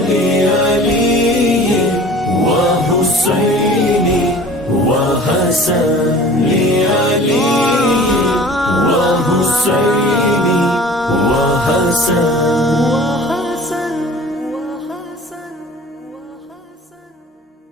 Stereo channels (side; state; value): both; normal; correlation 0.44